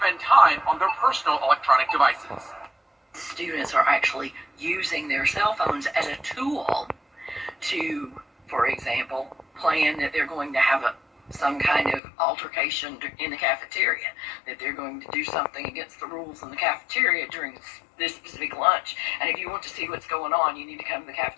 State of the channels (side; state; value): right; drops out; at 12.0 s